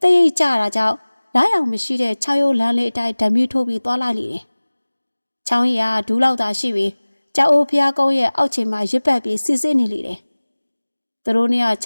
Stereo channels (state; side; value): inverted; both; correlation -1.00